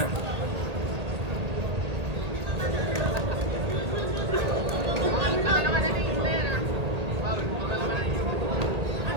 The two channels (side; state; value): left; late; 1.8 ms